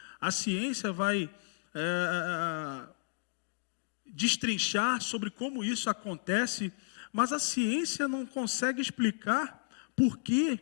a ciência vai destrinchar sobre como isso acontece, mas a ciência não consegue explicar por que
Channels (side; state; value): right; silent; digital silence